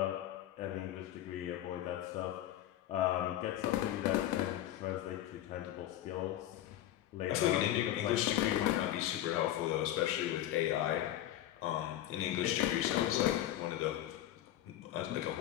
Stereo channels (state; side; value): quieter; right; 12.9 dB